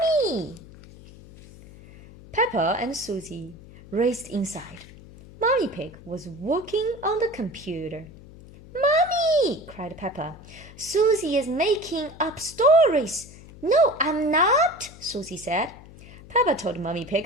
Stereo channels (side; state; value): left; noise; hum, 19 dB below the sound